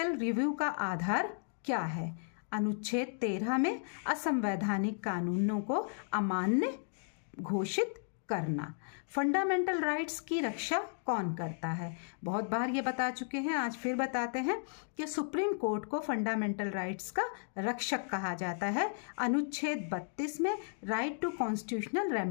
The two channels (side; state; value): right; silent; digital silence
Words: रिव्यू का आधार क्या है? अनुच्छेद 13 में असंवैधानिक कानूनों को अमान्य घोषित करना। फंडामेंटल राइट्स की रक्षा कौन करता है? बहुत बार ये बता चुके हैं, आज फिर बताते हैं कि सुप्रीम कोर्ट को फंडामेंटल राइट्स का रक्षक कहा जाता है। अनुच्छेद 32 में राइट टू कॉन्स्टिट्यूशनल